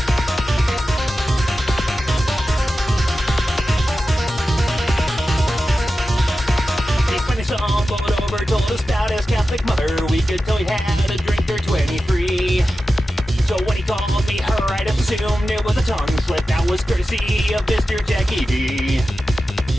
Stumbled over, told us about his Catholic mother. We could tell he had a drink or 23. So when he called me her, I'd assumed it was a tongue slip. That was courtesy of Mr. Jackie D.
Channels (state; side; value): normal; both; correlation 0.93